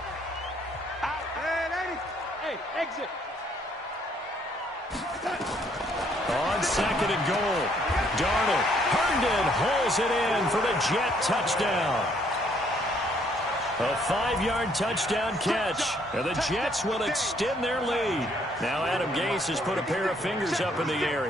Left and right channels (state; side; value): normal; both; correlation 0.66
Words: Exit. On 2nd and goal, Darnold. Herndon hauls it in for the Jet touchdown. A 5-yard touchdown catch. And the Jets will extend their lead. Now Adam Gase has put a pair of fingers up in the air.